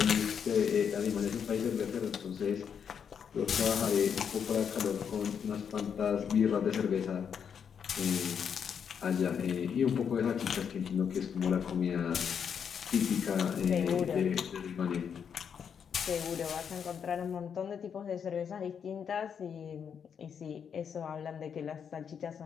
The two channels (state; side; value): quieter; right; 7.4 dB